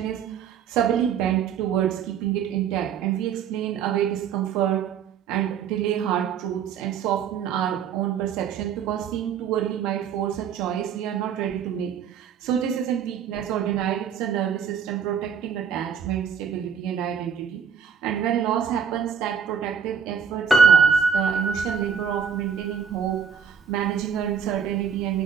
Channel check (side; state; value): left; quieter; 7.3 dB